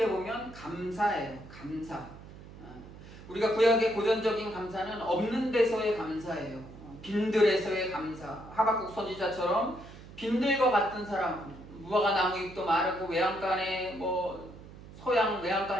보면 감사예요. 감사. 우리가 구약의 고전적인 감사는 없는 데서의 감사예요. 빈들에서의 감사. 하박국 선지자처럼 빈들과 같은 사람, 무화과 나무 잎도 마르고 외양간에 뭐 소양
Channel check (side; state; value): right; noise; hum, 17 dB below the sound